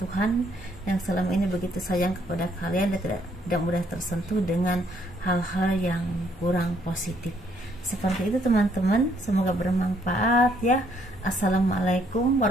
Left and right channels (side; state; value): both; normal; correlation 0.68